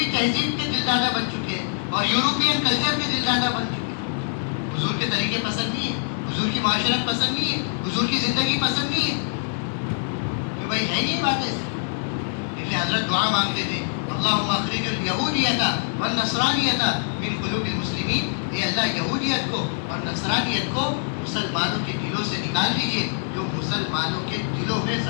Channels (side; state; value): right; silent; digital silence